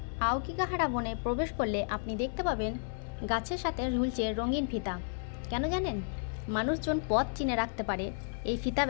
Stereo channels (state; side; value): silent; right; 56 dB below the other